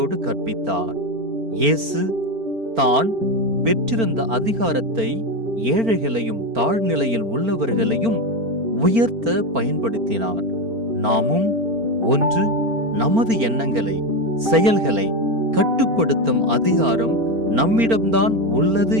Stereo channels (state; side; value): late; left; 4.4 ms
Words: கற்பித்தார். இயேசு தான் பெற்றிருந்த அதிகாரத்தை ஏழைகளையும் தாழ்நிலையில் உள்ளவர்களையும் உயர்த்த பயன்படுத்தினார். நாமும் ஒன்று, நமது எண்ணங்களை செயல்களை கட்டுப்படுத்தும் அதிகாரம் நம்மிடம்தான் உள்ளது